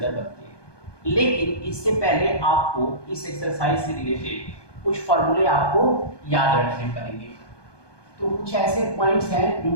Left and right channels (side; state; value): right; late; 1.2 ms